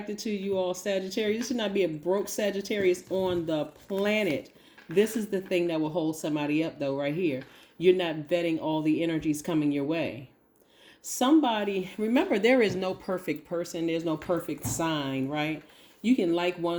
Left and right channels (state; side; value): identical; both; correlation 1.00